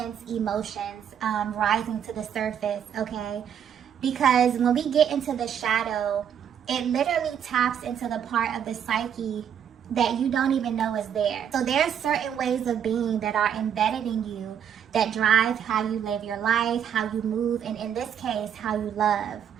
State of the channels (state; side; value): quieter; left; 8.7 dB